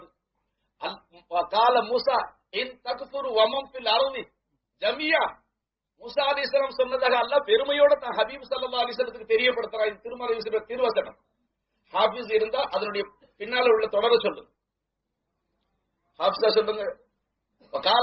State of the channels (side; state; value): both; identical; correlation 1.00